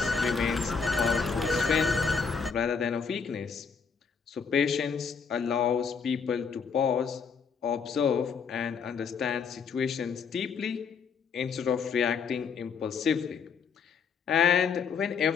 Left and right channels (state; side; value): quieter; right; 5.9 dB